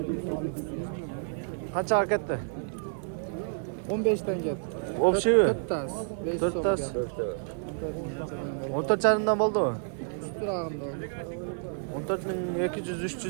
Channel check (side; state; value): left; silent; digital silence